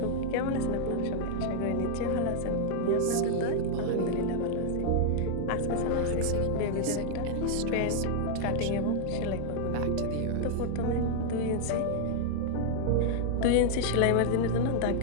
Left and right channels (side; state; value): both; different; correlation -0.01